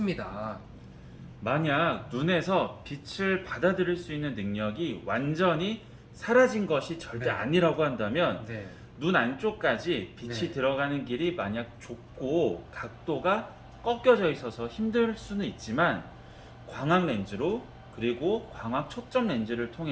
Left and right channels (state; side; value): identical; both; correlation 1.00